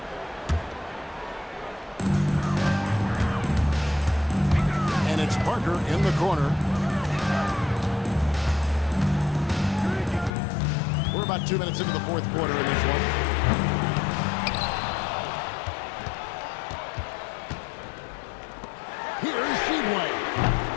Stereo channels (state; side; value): drops out; right; at 10.3 s